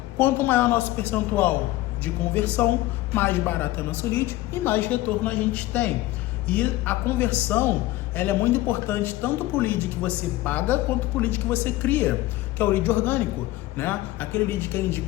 Quanto maior nosso percentual de conversão, mais barato é nosso lead e mais retorno a gente tem. E a conversão, ela é muito importante tanto para o lead que você paga quanto para o lead que você cria, que é o lead orgânico, né? Aquele lead que é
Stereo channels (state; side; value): quieter; right; 17.3 dB